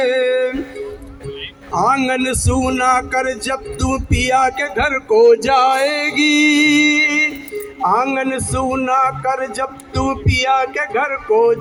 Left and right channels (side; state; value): both; identical; correlation 1.00